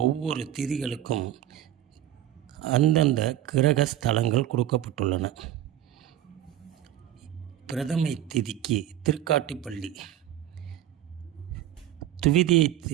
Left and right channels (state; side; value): quieter; left; 12.1 dB